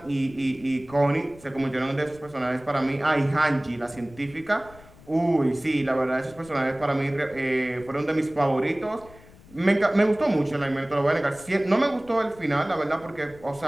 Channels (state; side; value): noise; left; rumble, 23 dB below the sound